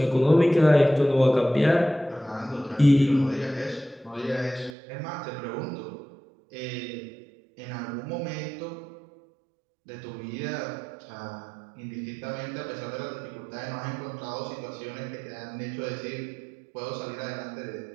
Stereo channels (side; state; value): left; drops out; at 4.8 s